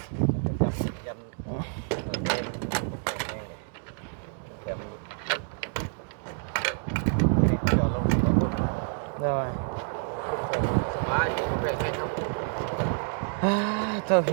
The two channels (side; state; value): left; silent; 58 dB below the other